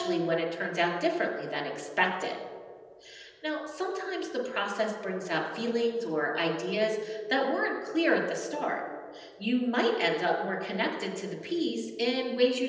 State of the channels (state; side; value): identical; both; correlation 1.00